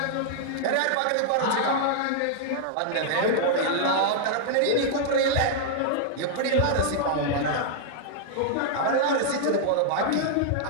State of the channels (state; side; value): different; both; correlation -0.01